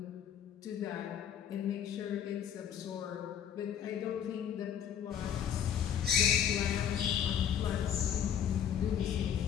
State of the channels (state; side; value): quieter; right; 8.9 dB